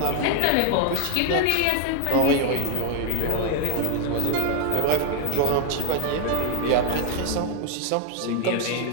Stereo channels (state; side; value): different; both; correlation 0.00